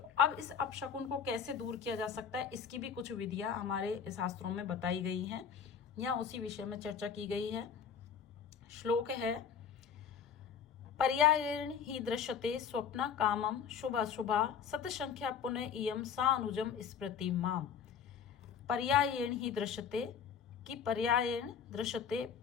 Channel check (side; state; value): right; quieter; 7.3 dB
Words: अब इस अपशकुन को कैसे दूर किया जा सकता है, इसकी भी कुछ विधियां हमारे शास्त्रों में बताई गई हैं, या उसी विषय में चर्चा की गई है। श्लोक है, पर्यायेण ही दृश्यते स्वप्न कामम शुभ अशुभा सतसंख्या पुनः इयम सा अनुजम स्मृति माम। पर्यायेण ही दृश्यते, कि पर्यायेण दृश्यते